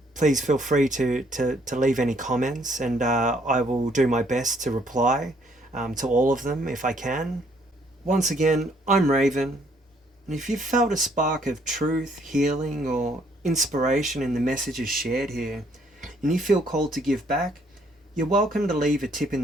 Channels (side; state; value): both; normal; correlation 0.66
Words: Please feel free to leave any comments, and I will do my best to reply to all of them if I can. Once again, I'm Raven. And if you've felt a spark of truth, healing, or inspiration in the messages shared here, and you feel called to give back, you're welcome to leave a tip in